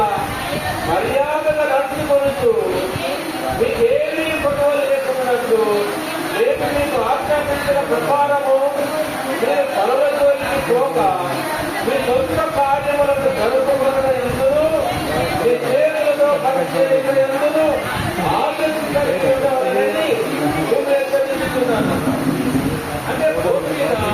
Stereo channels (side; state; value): both; identical; correlation 1.00